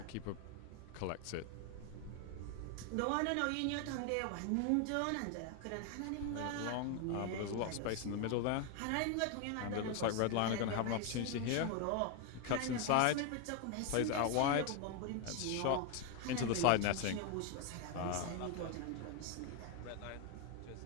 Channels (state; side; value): different; both; correlation 0.01